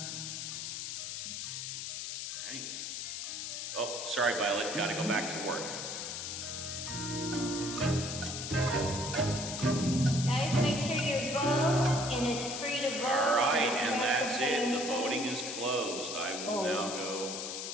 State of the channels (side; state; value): left; noise; hiss, 5 dB below the sound